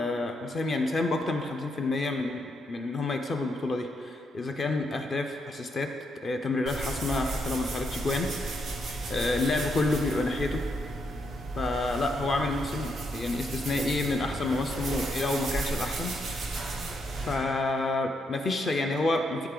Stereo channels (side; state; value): both; normal; correlation 0.79